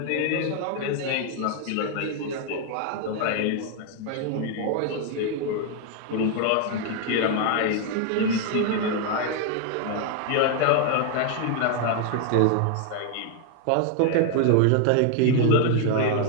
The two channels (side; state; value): both; different; correlation 0.00